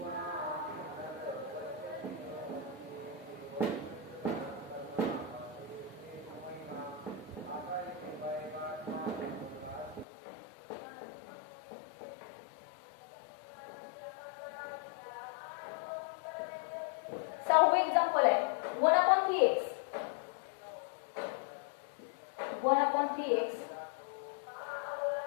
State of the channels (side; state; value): right; drops out; at 10.1 s